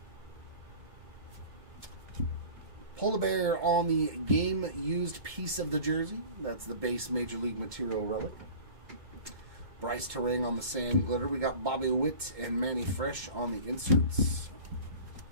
Polar Bear on the game used piece of the jersey. That's the base Major League Material relic. Bryce Terang on the Sand Glitter. We got Bobby Witt and Manny Fresh on the inserts.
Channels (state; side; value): late; left; 2.1 ms